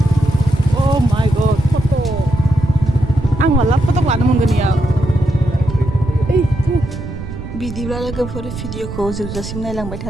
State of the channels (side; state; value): right; noise; rumble, 9 dB below the sound